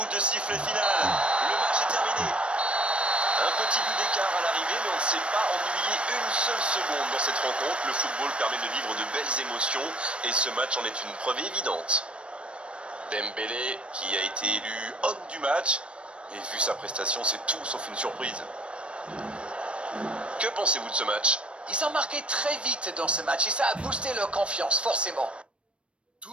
de sifflet final. Le match est terminé. Un petit but d'écart à l'arrivée, mais on ne s'est pas ennuyé une seule seconde dans cette rencontre. Le football permet de vivre de belles émotions et ce match en est une preuve évidente. Dembélé, qui a été élu homme du match, et vu sa prestation, c'est tout sauf une surprise. Que pensez-vous de ce match? Ils ont marqué très vite dans ce match et ça a boosté leur confiance, forcément.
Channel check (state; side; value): late; left; 0.058 ms